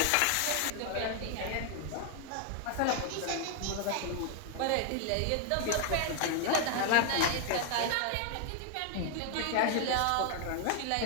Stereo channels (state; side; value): different; both; correlation 0.00